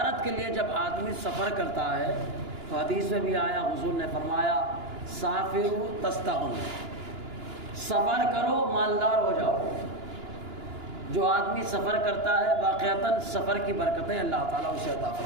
کے لیے جب آدمی سفر کرتا ہے تو حدیث میں بھی آیا، حضور نے فرمایا سافروا تستغنوا، سفر کرو مالدار ہو جاؤ۔ جو آدمی سفر کرتا ہے واقعتاً سفر کی برکتیں اللہ تعالیٰ اسے عطا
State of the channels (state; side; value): late; left; 2.9 ms